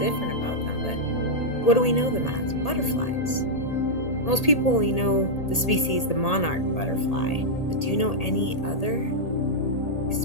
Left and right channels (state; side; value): late; right; 1.8 ms